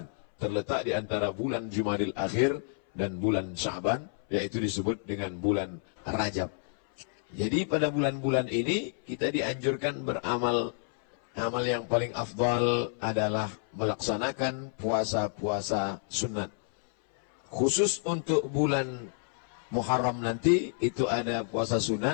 terletak di antara bulan Jumadil Akhir dan bulan Sya'ban, yaitu disebut dengan bulan Rajab. Jadi pada bulan-bulan ini kita dianjurkan beramal. Amal yang paling afdal adalah melaksanakan puasa-puasa sunat. Khusus untuk bulan Muharram nanti itu ada puasa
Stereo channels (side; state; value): right; silent; 58 dB below the other